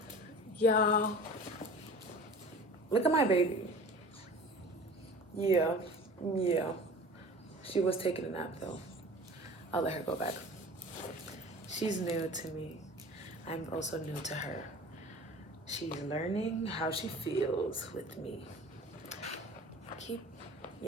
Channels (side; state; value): both; normal; correlation 0.41